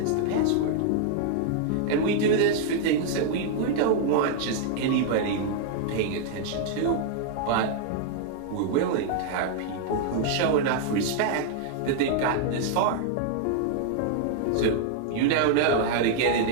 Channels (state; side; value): different; both; correlation -0.01